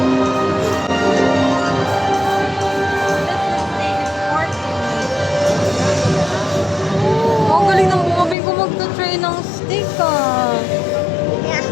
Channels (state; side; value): drops out; right; at 8.3 s